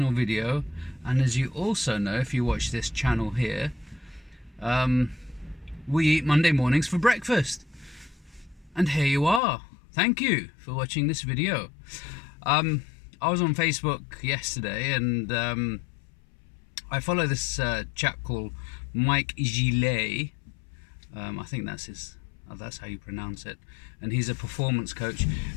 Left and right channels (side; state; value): right; drops out; at 9.4 s